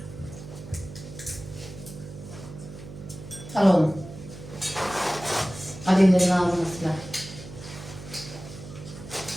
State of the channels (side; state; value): right; noise; hum, 13 dB below the sound